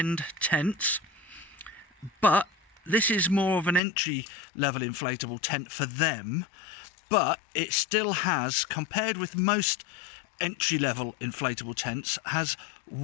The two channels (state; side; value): drops out; right; at 3.8 s